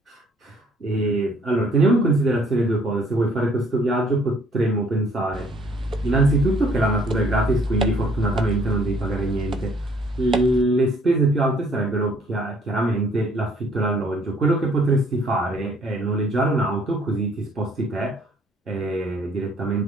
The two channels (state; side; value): normal; both; correlation 0.61